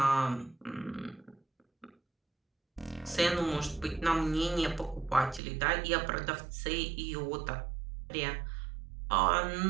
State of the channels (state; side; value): drops out; left; at 5.4 s